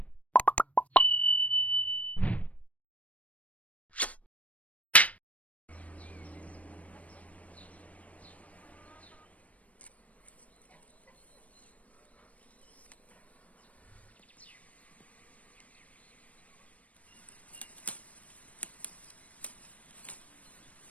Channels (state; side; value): late; right; 0.067 ms